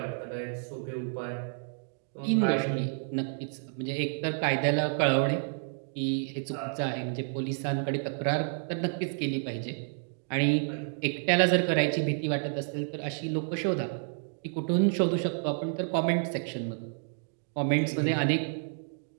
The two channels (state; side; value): silent; left; digital silence